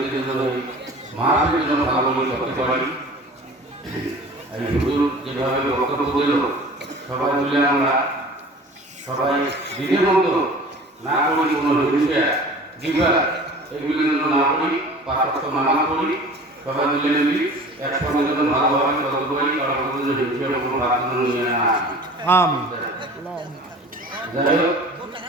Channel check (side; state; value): both; normal; correlation 0.42